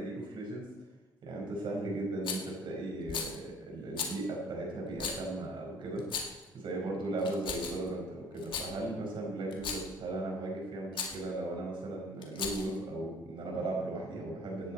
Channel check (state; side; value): normal; both; correlation 0.52